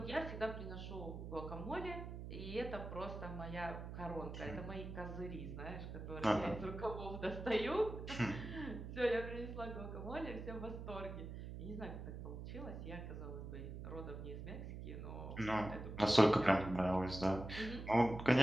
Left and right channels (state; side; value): noise; right; hum, 8 dB below the sound